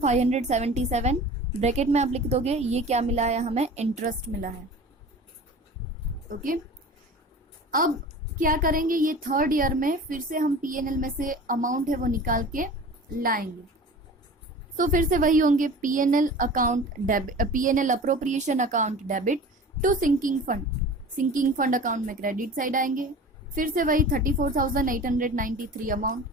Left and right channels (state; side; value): normal; both; correlation 0.38